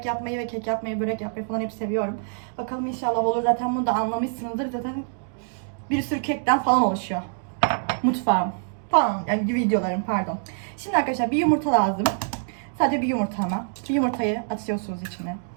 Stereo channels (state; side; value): silent; left; digital silence